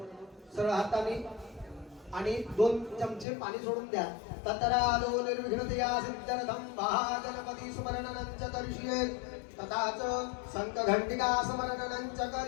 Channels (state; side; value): drops out; right; at 3.2 s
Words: सरळ हाताने आणि 2 चमचे पाणी सोडून द्या. ततरादो निर्विघ्नतया सिद्धर्थम महागणपती स्मरणं च करिष्ये. तथाच संत घंटिका स्मरणंच